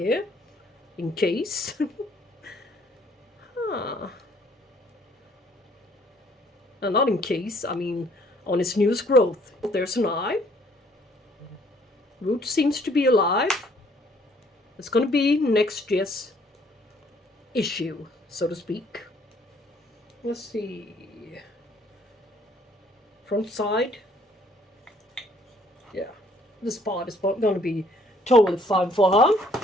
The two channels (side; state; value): both; normal; correlation 0.62